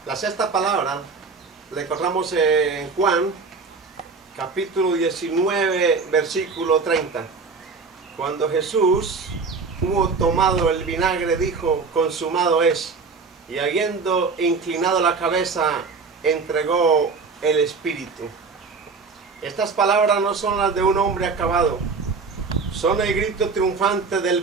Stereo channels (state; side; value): quieter; left; 4.6 dB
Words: La sexta palabra la encontramos en Juan, capítulo 19, versículo 30. Cuando Jesús hubo tomado el vinagre, dijo: consumado es. Y habiendo inclinado la cabeza, entregó el Espíritu. Estas palabras no son las de un hombre acabado, son el grito triunfante del